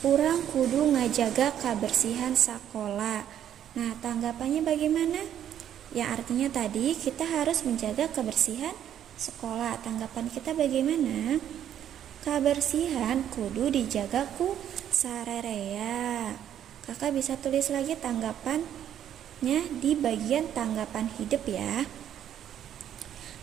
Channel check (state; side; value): quieter; left; 10.3 dB